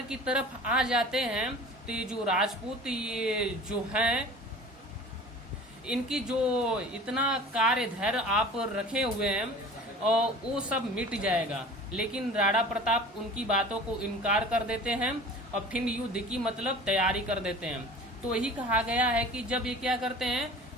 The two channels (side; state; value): both; normal; correlation 0.41